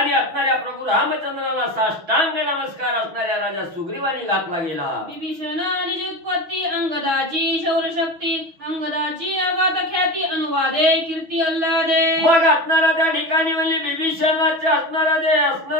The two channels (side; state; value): left; late; 6.1 ms